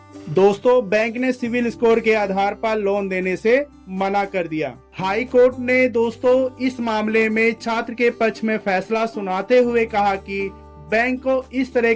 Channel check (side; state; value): both; identical; correlation 1.00